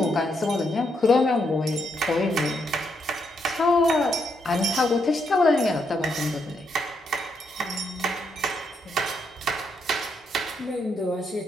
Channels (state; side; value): normal; both; correlation 0.78